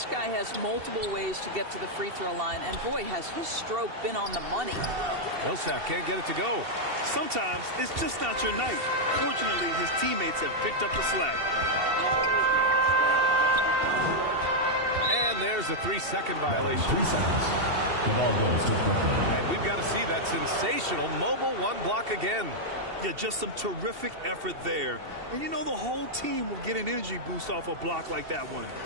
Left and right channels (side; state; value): left; late; 2.7 ms